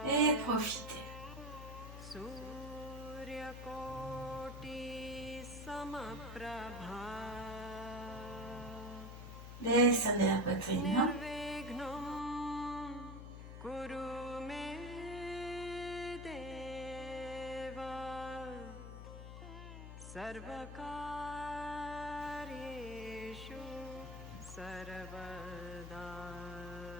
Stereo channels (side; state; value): left; noise; hum, 10 dB below the sound